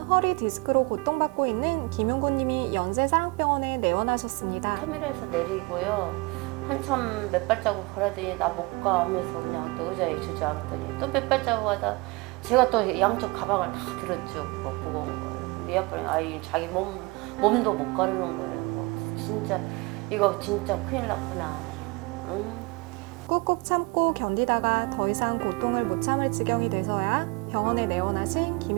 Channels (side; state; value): left; quieter; 25.8 dB